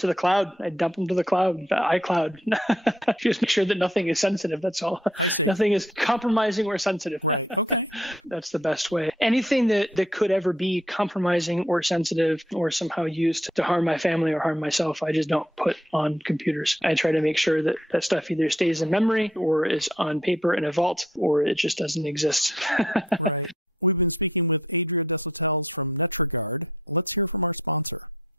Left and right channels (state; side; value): normal; both; correlation 0.68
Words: the cloud. I dump them to the cloud, the iCloud. Just make sure that nothing is sensitive. That's all. I see. Nothing is compromising or sensitive. Right. Okay. That's the best way. Anything that could ever be compromising or sensitive or somehow used to harm my family or harm myself, I just don't put on computers. I try to make sure that that stuff either stays in memory or is on paper in a vault or it just doesn't exist. Right. We've been speaking with Adriel Desautels from Netragard. Let's hear from our sponsor.